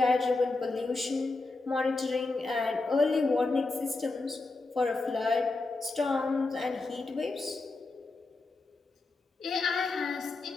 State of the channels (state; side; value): quieter; right; 3.4 dB